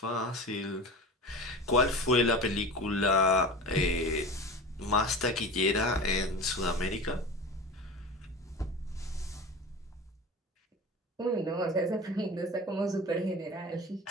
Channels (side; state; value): both; normal; correlation 0.32